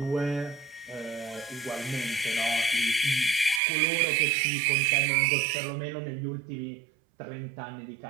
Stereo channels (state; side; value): drops out; left; at 3.6 s